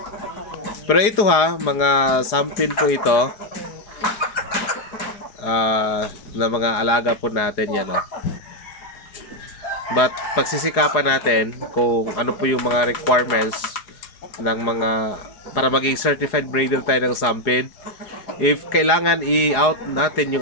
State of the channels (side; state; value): right; late; 4.8 ms